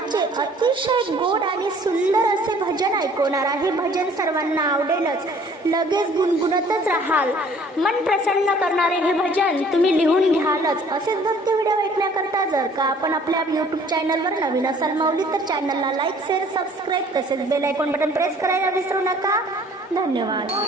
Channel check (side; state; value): both; normal; correlation 0.55